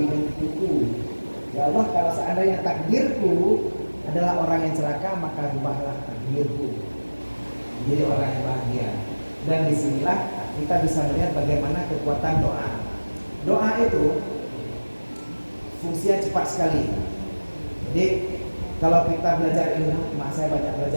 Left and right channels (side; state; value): both; inverted; correlation -1.00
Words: Ya Allah, kalau seandainya takdirku adalah orang yang celaka, maka rubahlah takdirku jadi orang yang bahagia. Dan disinilah kita bisa melihat bagaimana kekuatan doa. Doa itu fungsinya cepat sekali. Jadi kalau kita belajar ilmu hikmah, saya banyak